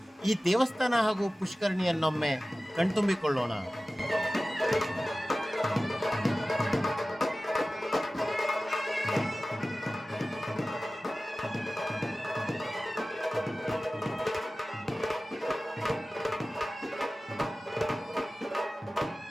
ಈ ದೇವಸ್ಥಾನ ಹಾಗೂ ಪುಷ್ಕರಣಿಯನ್ನೊಮ್ಮೆ ಕಣ್ತುಂಬಿಕೊಳ್ಳೋಣ.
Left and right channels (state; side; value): normal; both; correlation 0.96